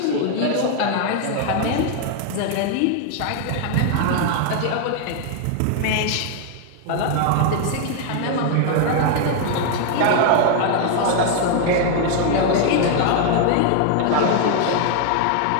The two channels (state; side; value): different; both; correlation 0.00